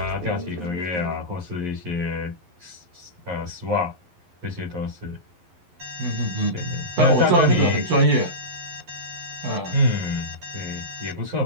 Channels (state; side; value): late; left; 11 ms